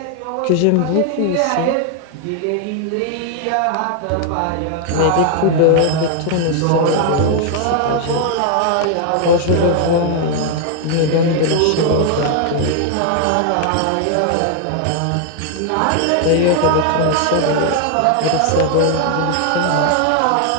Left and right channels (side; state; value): both; different; correlation 0.00